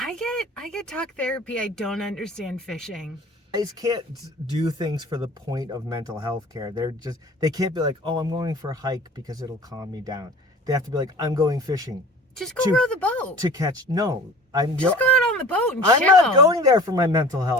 get talk therapy. I don't understand fishing. Guys can't do things for the point of mental health care. They can't be like, oh, I'm going for a hike because it'll calm me down. They have to be like, I'm going fishing. Just go row the boat. To catch, no. Just go out on the boat and chill. I'm not going there for my mental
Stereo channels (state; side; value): normal; both; correlation 0.43